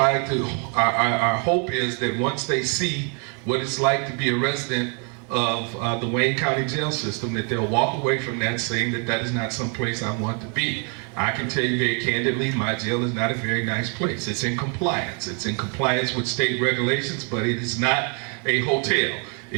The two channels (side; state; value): left; quieter; 38.3 dB